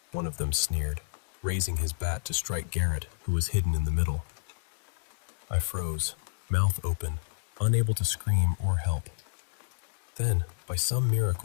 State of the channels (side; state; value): right; silent; digital silence